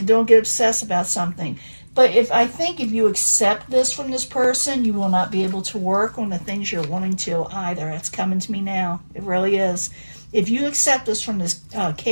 don't get obsessed about something. But I think if you accept this from this person, you will not be able to work on the things you're wanting to either. It's coming to me now. It really is. If you accept this from this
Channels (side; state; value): both; inverted; correlation -1.00